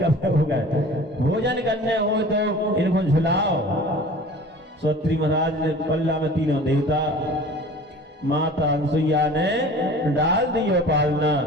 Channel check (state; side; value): normal; both; correlation 0.43